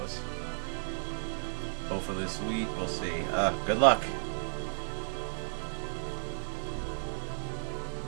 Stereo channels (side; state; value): left; silent; digital silence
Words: Hopefully this week, we'll see. Good luck.